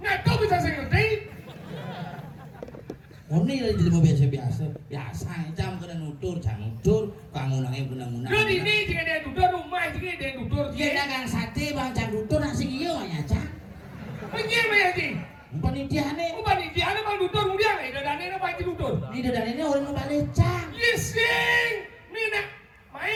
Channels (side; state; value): both; identical; correlation 1.00